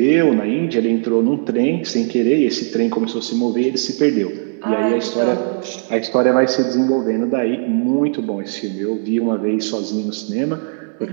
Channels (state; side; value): silent; left; 56 dB below the other